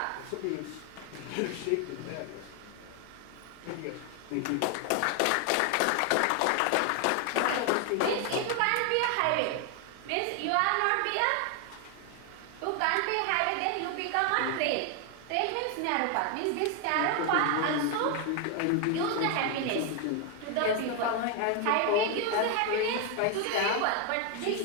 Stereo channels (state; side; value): different; both; correlation 0.01